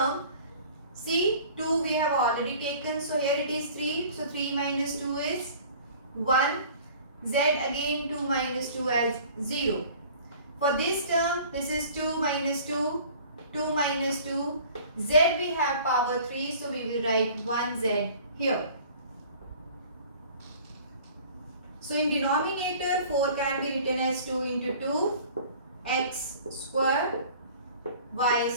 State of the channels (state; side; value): inverted; both; correlation -0.48